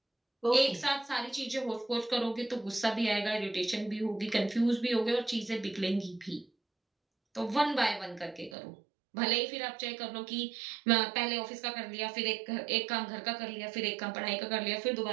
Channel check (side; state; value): left; drops out; at 8.6 s